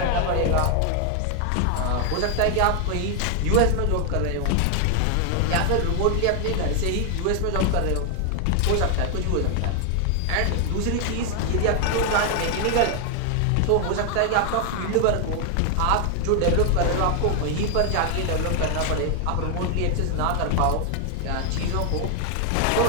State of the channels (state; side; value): different; both; correlation 0.00